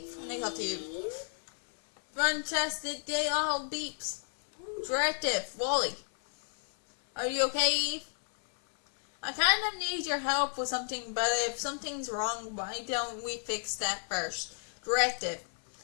let me talk to you. Fantastic day, all beeps. Directive, Wally. Are you okay, Eve? I kind of need your help with something, but if something's wrong, why don't we fix that first? Directive.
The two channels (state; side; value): silent; right; 56 dB below the other